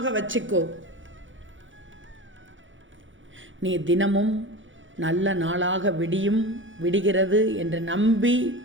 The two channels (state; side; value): late; left; 0.56 ms